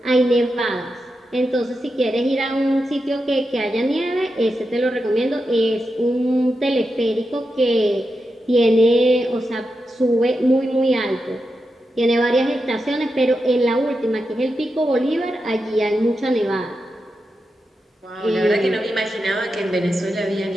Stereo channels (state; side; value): normal; both; correlation 0.88